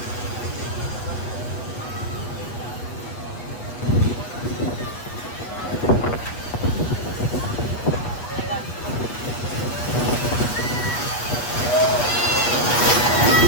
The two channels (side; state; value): right; late; 8.3 ms